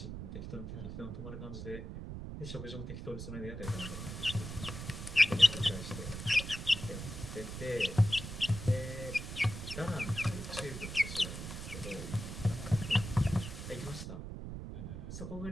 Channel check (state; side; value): noise; right; rumble, 8 dB below the sound